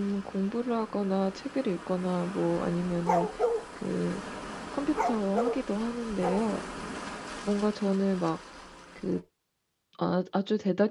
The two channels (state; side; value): identical; both; correlation 1.00